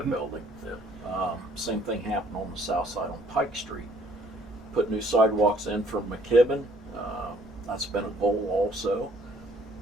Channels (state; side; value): normal; both; correlation 0.61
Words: Yeah. Same thing happened on the south side on Pike Street. Put new sidewalks in from McKibben. That's been a goal also.